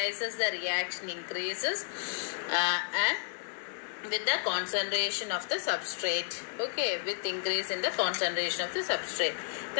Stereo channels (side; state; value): right; silent; digital silence